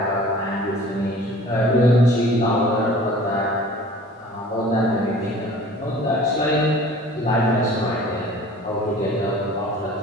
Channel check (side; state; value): both; normal; correlation 0.46